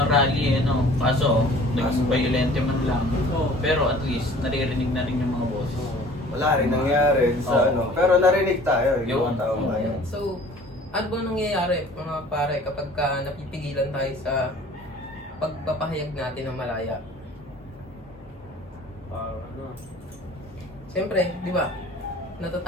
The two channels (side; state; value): both; normal; correlation 0.49